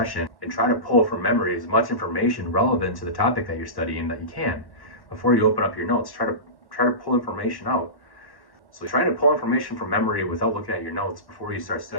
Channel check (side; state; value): right; late; 1.1 ms